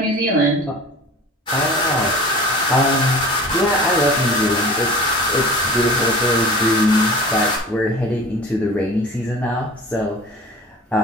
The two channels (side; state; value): both; normal; correlation 0.39